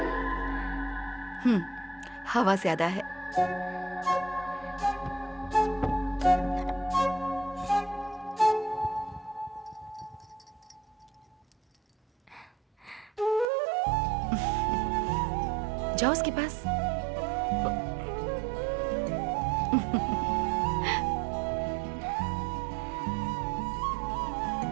हवा ज्यादा है। जाओ उसके पास।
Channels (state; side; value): drops out; left; at 13.5 s